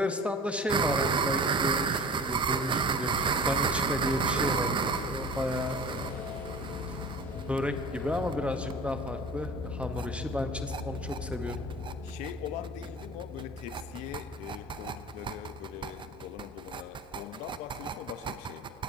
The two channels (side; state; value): both; normal; correlation 0.39